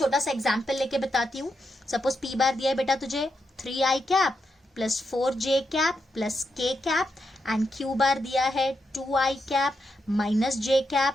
सा एग्जांपल लेके बताती हूँ। सपोज p बार दिया है बेटा तुझे 3i cap plus 4j cap plus k cap, and q बार दिया है 2i cap minus j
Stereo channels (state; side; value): normal; both; correlation 0.83